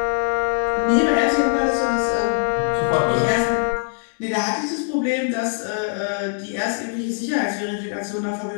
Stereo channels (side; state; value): right; silent; digital silence